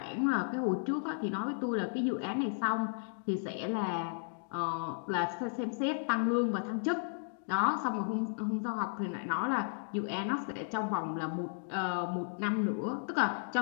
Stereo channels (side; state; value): right; silent; digital silence